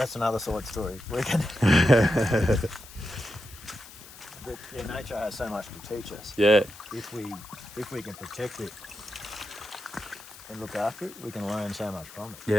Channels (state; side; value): noise; left; hiss, 18 dB below the sound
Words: another side story. But nature has so much to teach us. Yeah. If we can protect it and look after it, we can learn so much from it.